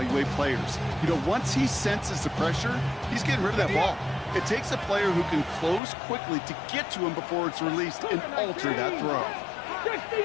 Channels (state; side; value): drops out; right; at 5.8 s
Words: players. You know, once he senses the pressure, he's getting rid of that ball. It takes a player who can close quickly to get to him before it's released and alter that throw. 60